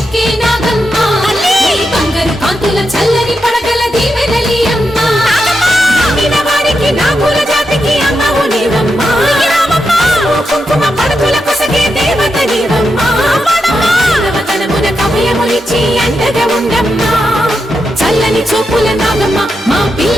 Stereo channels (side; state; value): both; normal; correlation 0.86